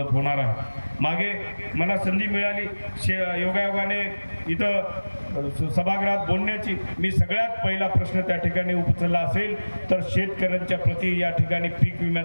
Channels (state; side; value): inverted; both; correlation -1.00